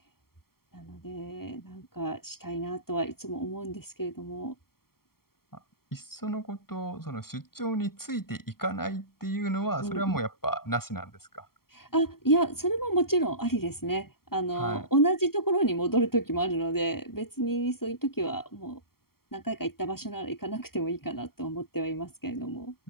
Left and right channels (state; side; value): late; right; 0.94 ms